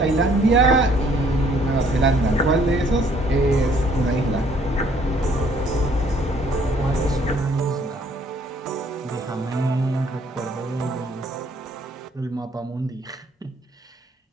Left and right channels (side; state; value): both; normal; correlation 0.62